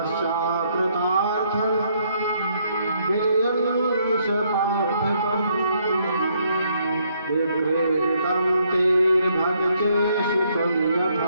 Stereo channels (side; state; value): both; inverted; correlation -0.71